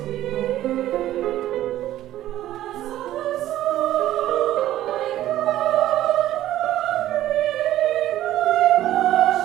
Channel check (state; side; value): quieter; left; 13.5 dB